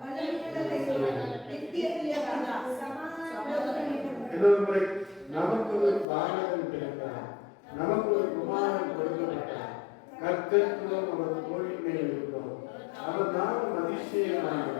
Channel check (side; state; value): right; drops out; at 6.1 s